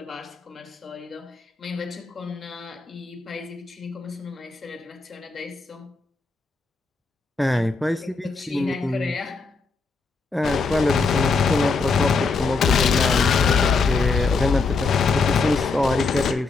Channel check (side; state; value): right; quieter; 4.2 dB